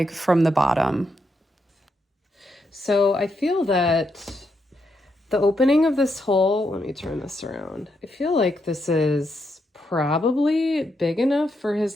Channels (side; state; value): both; normal; correlation 0.81